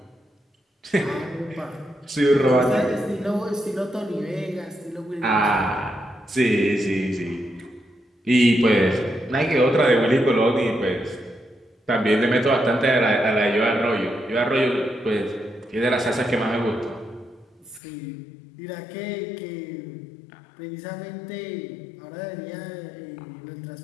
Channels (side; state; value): right; drops out; at 17.8 s